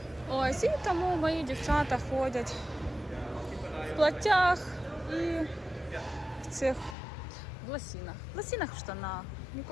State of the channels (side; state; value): right; drops out; at 7.0 s